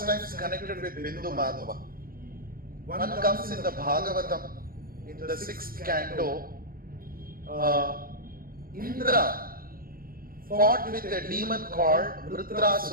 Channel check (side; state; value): left; late; 0.42 ms